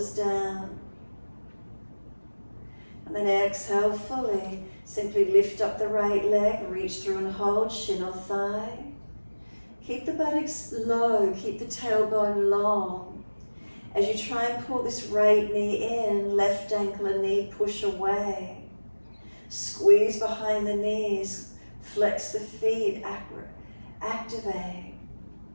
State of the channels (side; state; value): both; inverted; correlation -1.00